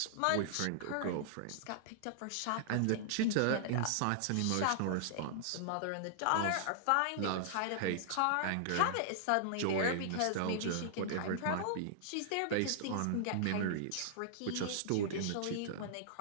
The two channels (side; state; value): both; different; correlation -0.01